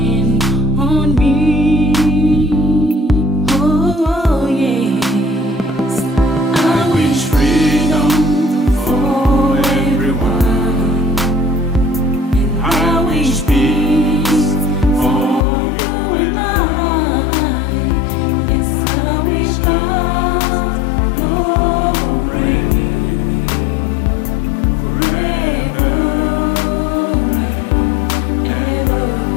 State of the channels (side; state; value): right; drops out; at 15.5 s